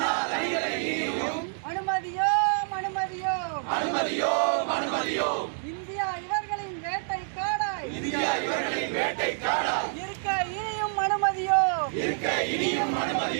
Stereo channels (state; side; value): silent; left; digital silence